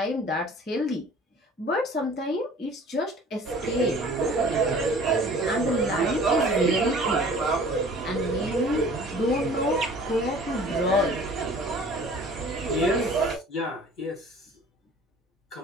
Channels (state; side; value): normal; both; correlation 0.48